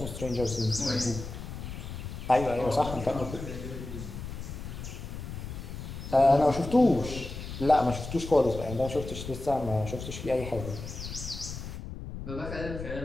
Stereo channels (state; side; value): noise; left; rumble, 8 dB below the sound